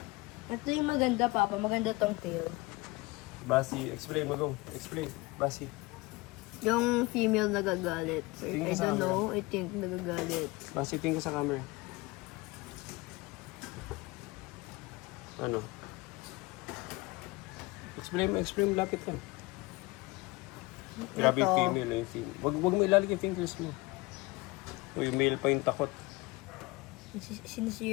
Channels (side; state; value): right; quieter; 23.1 dB